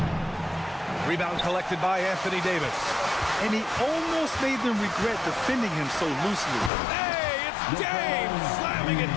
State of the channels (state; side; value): drops out; right; at 6.7 s